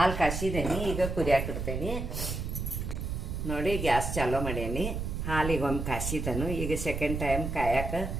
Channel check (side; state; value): right; noise; rumble, 3 dB below the sound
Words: ಕಾಯಿಸಿದ್ದೇನೆ, ಈಗ ಕುದಿಯಾಕೆ ಇಡ್ತೇನೆ. ನೋಡಿ, ಗ್ಯಾಸ್ ಚಾಲೂ ಮಾಡೇನಿ. ಹಾಲಿಗೆ ಒಂದು ಕಾಯಿಸಿದನು. ಈಗ ಸೆಕೆಂಡ್ ಟೈಮ್ ಕಾಯಕ್ಕೆ